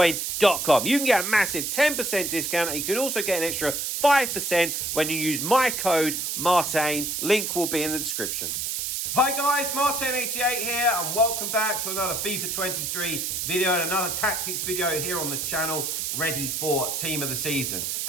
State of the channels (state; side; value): noise; right; hiss, 2 dB below the sound